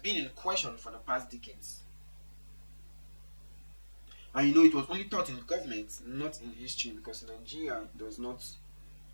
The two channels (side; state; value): both; inverted; correlation -1.00